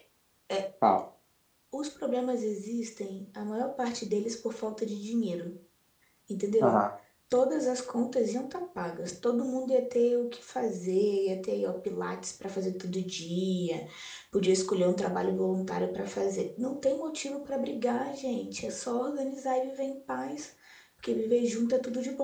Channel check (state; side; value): identical; both; correlation 1.00